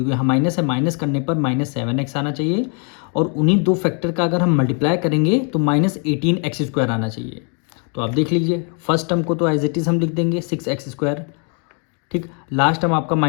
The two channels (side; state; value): right; quieter; 39.4 dB